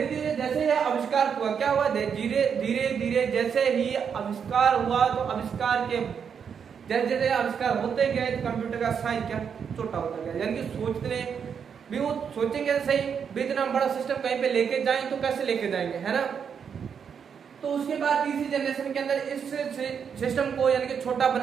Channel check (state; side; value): quieter; left; 7.1 dB